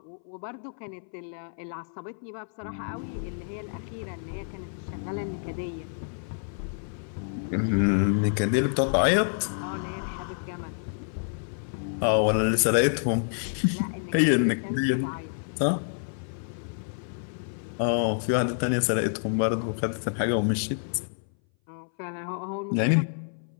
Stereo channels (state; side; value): silent; right; 58 dB below the other